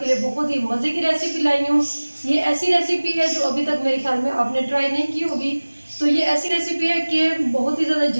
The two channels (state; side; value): inverted; both; correlation -1.00